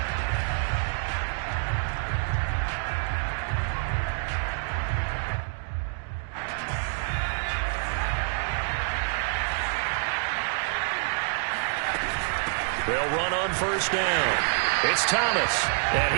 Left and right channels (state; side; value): silent; left; digital silence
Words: They'll run on first down. It's Thomas,